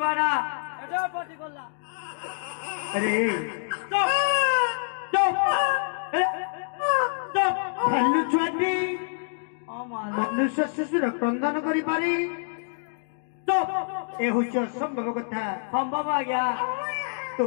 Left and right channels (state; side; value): silent; right; digital silence